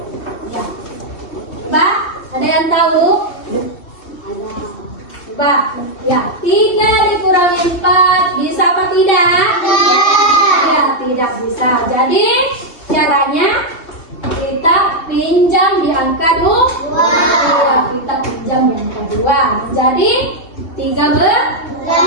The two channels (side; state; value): right; late; 3.2 ms